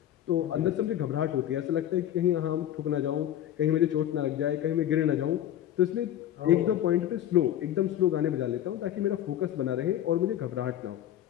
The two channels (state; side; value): quieter; right; 11.6 dB